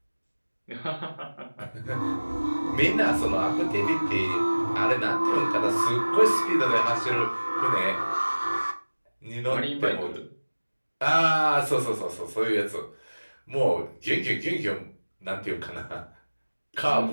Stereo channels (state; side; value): inverted; both; correlation -1.00